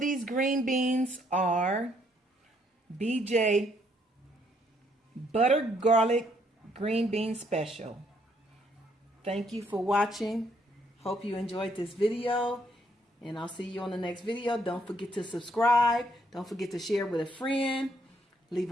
green beans are BJ Butter Garlic Green Bean Special. Thank you for watching. Hope you enjoyed this video. And I'll see you on the next video. Don't forget to subscribe. Don't forget to share with a friend. Leave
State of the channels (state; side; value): normal; both; correlation 0.70